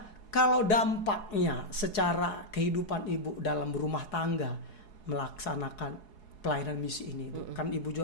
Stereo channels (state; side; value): late; right; 4.7 ms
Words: kalau dampaknya secara kehidupan Ibu dalam rumah tangga melaksanakan pelayanan misi ini, kan Ibu